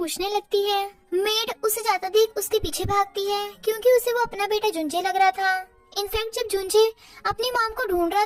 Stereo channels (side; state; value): both; identical; correlation 1.00